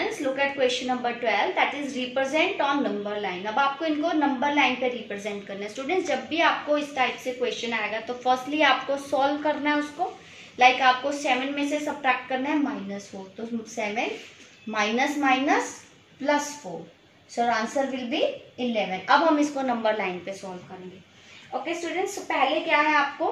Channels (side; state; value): both; identical; correlation 1.00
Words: look at question number 12, that is represent on number line. अब आपको इनको number line पे represent करना है। Students, जब भी आपको इस टाइप से क्वेश्चन आएगा तो फर्स्टली आपको सॉल्व करना है उसको। लाइक आपको 7 में से सब्ट्रैक्ट करना है -4, तो 7 minus minus +4, so answer will B 11। अब हम इसको नंबर लाइन पे सॉल्व करेंगे। ओके स्टूडेंट्स, पहले क्या है आपको